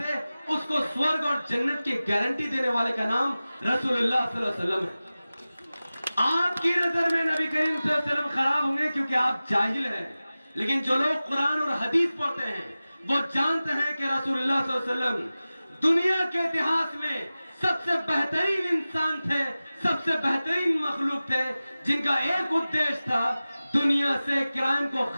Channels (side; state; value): both; inverted; correlation -0.96